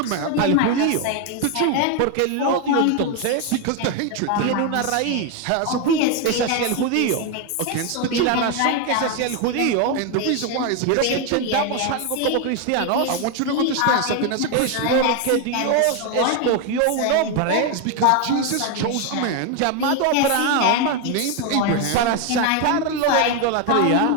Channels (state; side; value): different; both; correlation 0.01